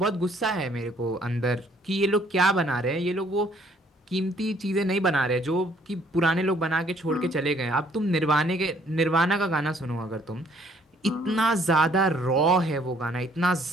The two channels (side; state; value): both; normal; correlation 0.63